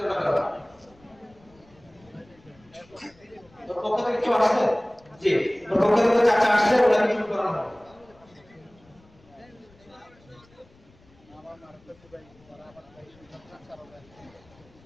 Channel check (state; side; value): noise; left; rumble, 28 dB below the sound